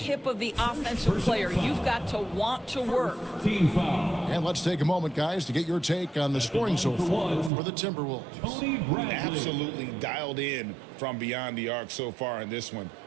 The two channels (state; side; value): drops out; left; at 7.5 s